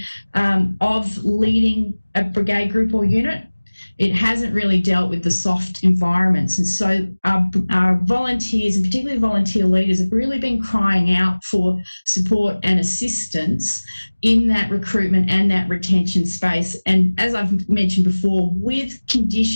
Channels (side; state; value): both; inverted; correlation -1.00